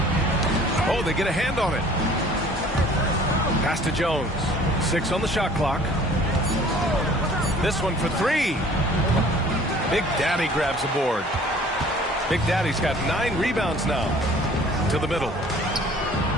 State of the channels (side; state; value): both; normal; correlation 0.51